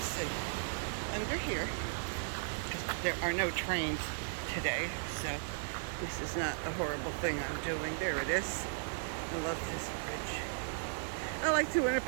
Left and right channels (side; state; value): left; silent; digital silence